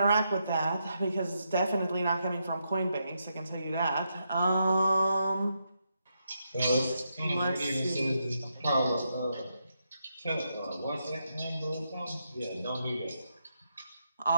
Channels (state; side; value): inverted; both; correlation -0.82